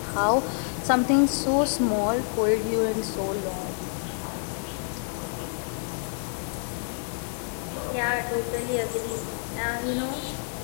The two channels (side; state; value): right; silent; 60 dB below the other